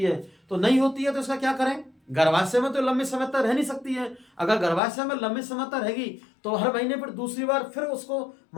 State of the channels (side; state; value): right; drops out; at 4.8 s